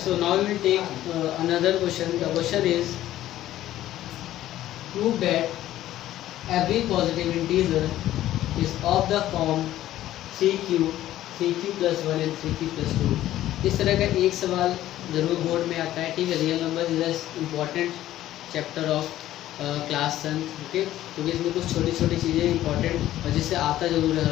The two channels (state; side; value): quieter; right; 13.7 dB